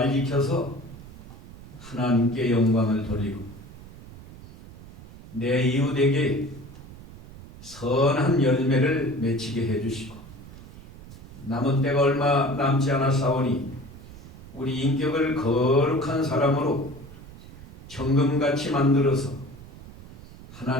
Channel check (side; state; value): right; noise; rumble, 17 dB below the sound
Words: 지켜서 하나님께 영광을 돌리고 내 이웃에게 선한 열매를 맺히게 해주시고 남은 때가 얼마 남지 않았사오니 우리 인격을 거룩한 사람으로 정금같이 만들어서